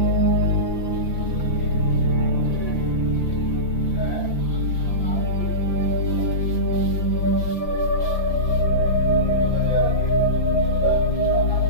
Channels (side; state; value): right; late; 5.9 ms